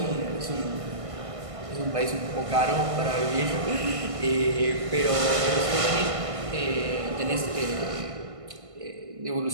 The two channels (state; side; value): late; left; 1.5 ms